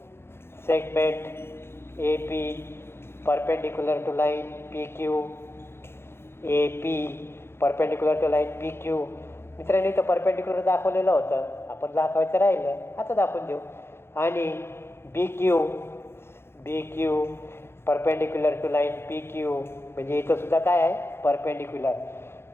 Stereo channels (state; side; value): late; right; 0.12 ms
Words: Segment A P perpendicular to line P Q. A P perpendicular to line P Q. मित्रांनो इथं परपेंडिक्युलर दाखवलेलं होतं आपण दाखवायचं राहिलं आता दाखवून देऊ. आणि B Q perpendicular to line P Q म्हणजे इथं सुद्धा काय आहे परपेंडिक्युलर.